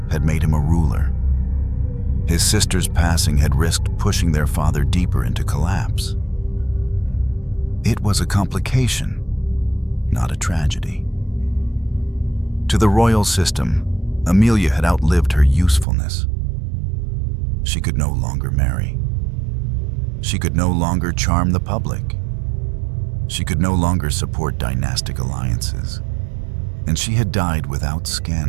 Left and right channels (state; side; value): drops out; left; at 15.9 s